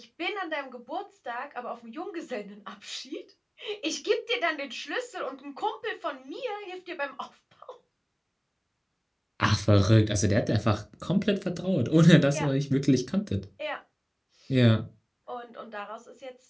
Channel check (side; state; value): both; identical; correlation 1.00